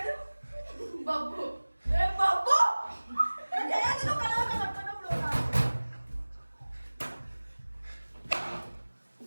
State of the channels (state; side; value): inverted; both; correlation -1.00